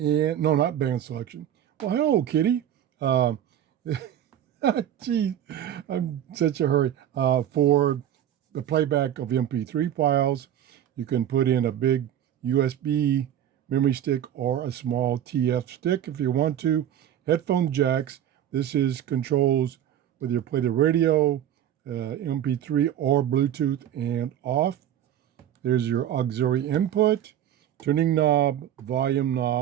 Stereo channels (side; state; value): left; quieter; 10.8 dB